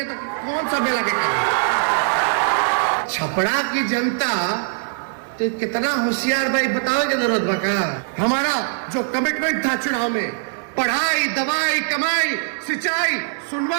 तो कौन सा मेला के करेंगे? छपरा की जनता तो कितना होशियार भाई, बताओ की जरूरत बका। हमारा जो कमिटमेंट था चुनाव में, पढ़ाई, दवाई, कमाई, सिंचाई,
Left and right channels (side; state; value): left; silent; digital silence